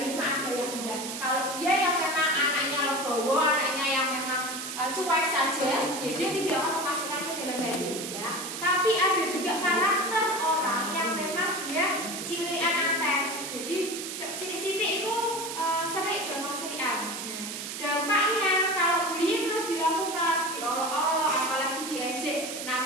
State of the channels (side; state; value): right; noise; hiss, 7 dB below the sound